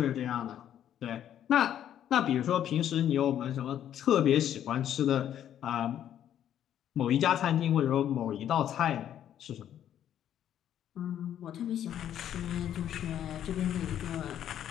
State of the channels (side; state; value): right; quieter; 10.5 dB